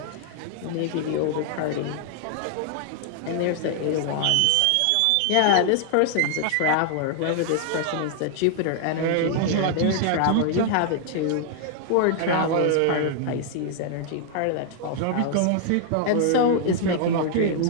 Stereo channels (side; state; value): both; different; correlation 0.00